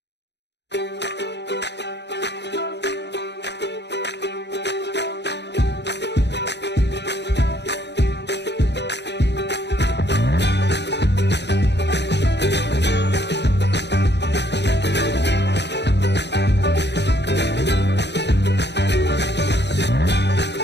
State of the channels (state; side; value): late; right; 0.50 ms